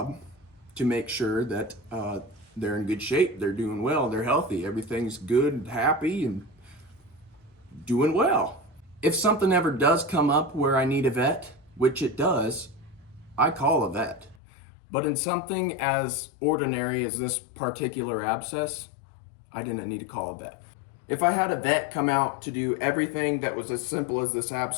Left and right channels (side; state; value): right; drops out; at 14.4 s